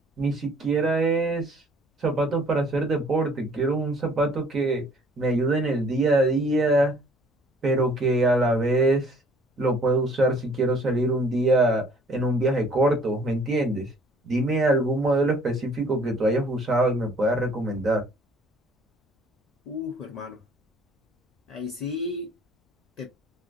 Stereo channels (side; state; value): both; normal; correlation 0.56